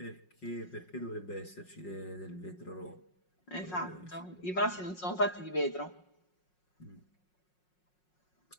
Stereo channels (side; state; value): right; late; 5.5 ms